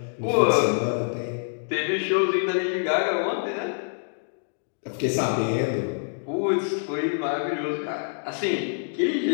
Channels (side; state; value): right; silent; digital silence